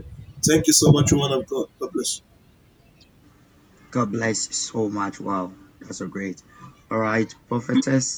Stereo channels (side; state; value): both; identical; correlation 1.00